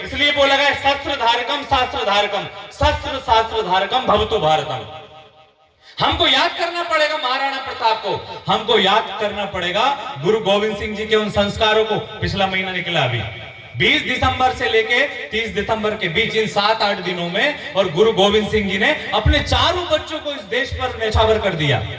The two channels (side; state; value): both; identical; correlation 1.00